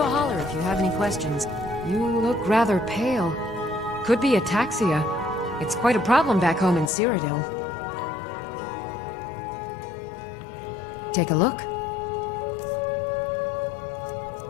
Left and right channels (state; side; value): drops out; right; at 6.9 s